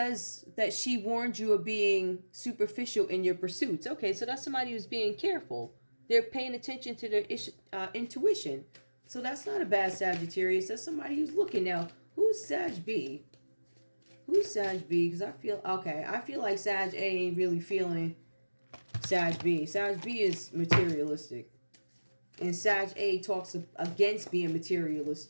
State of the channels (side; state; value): both; inverted; correlation -1.00